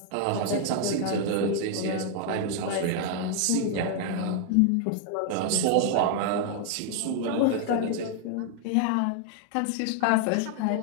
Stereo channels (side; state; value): both; different; correlation 0.00